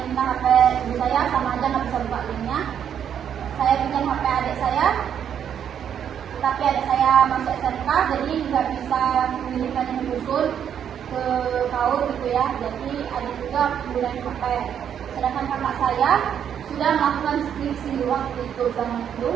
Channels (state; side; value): quieter; left; 8.8 dB